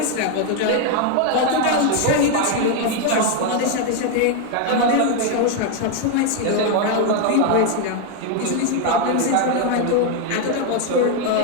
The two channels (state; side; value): different; both; correlation 0.01